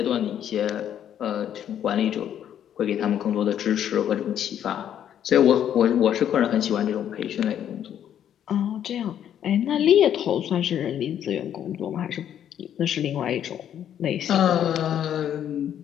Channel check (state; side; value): quieter; right; 10.0 dB